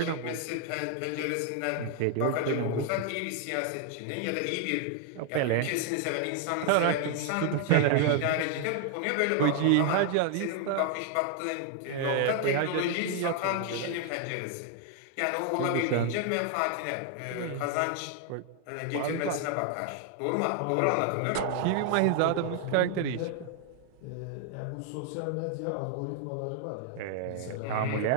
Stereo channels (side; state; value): both; different; correlation 0.00